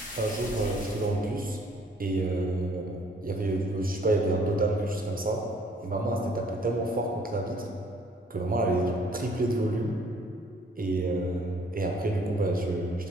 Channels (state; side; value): normal; both; correlation 0.60